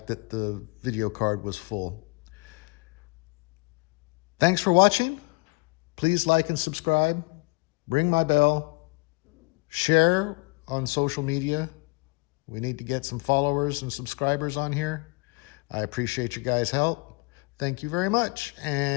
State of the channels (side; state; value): right; quieter; 27.8 dB